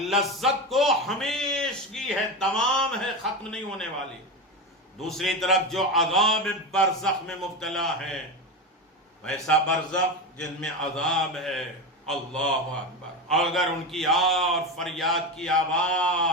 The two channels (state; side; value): normal; both; correlation 0.19